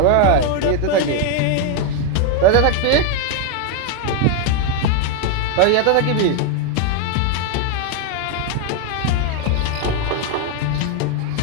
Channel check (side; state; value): both; different; correlation 0.01